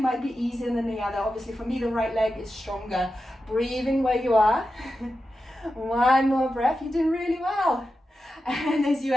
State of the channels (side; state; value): both; normal; correlation 0.91